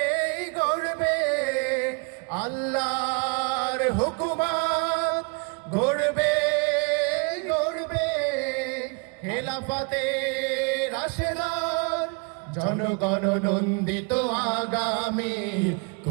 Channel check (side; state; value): left; quieter; 32.6 dB